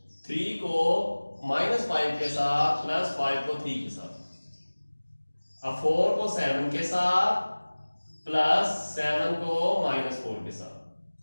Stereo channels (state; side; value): inverted; both; correlation -1.00